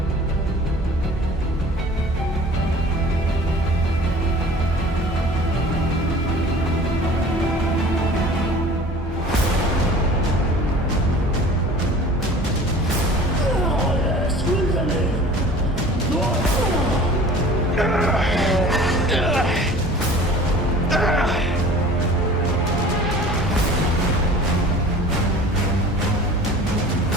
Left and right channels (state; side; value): normal; both; correlation 0.44